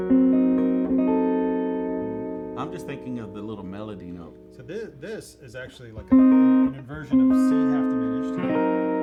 I'm just thinking of the little melody note. So this is actually like an inversion of C half diminished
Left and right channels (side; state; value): both; identical; correlation 1.00